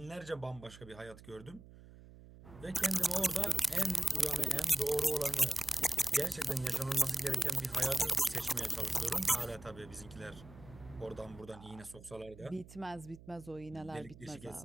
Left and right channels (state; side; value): noise; right; hum, 19 dB below the sound